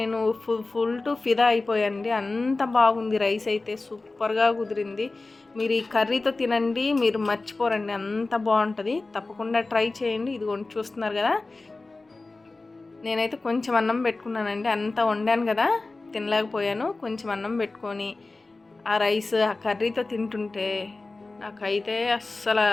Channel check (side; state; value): right; quieter; 3.4 dB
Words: ఫుల్ టు ఫిదా అయిపోయానండి. అంత బాగుంది, రైస్ అయితే సూపర్గా కుదిరింది. మీరు ఈ కర్రీతో తినండి, మీరు మర్చిపోరండి, అంత బాగుంటుంది. తప్పకుండా ట్రై చేయండి. ఇదిగోండి చూస్తున్నారు కదా, నేనైతే కొంచెం అన్నం పెట్టుకున్నానండి. అంత వండాను కదా, తినలేకపోయాను. కొంచెం అన్నం పెట్టుకొని ఆ రైస్ ఆ కర్రీతో తింటుంటే నాకైతే అస్సలు